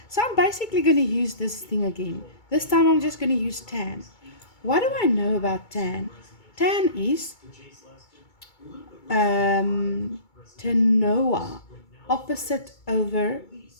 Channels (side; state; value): right; late; 2.2 ms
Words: So I'm basically going to use this thing again. This time I'm just going to use tan. What do I know about tan? Tan is tanoa, opposite over